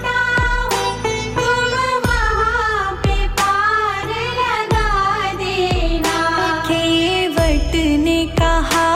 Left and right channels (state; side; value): identical; both; correlation 1.00